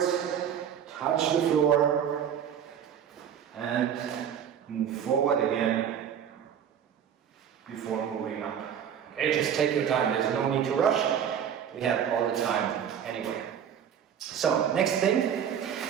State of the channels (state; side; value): quieter; left; 8.7 dB